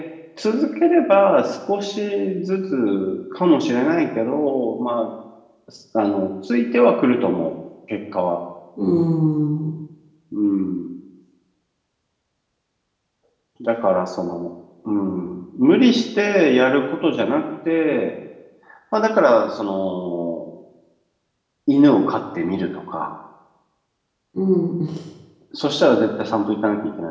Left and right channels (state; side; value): identical; both; correlation 1.00